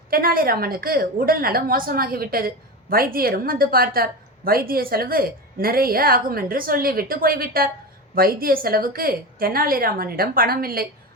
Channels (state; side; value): normal; both; correlation 0.22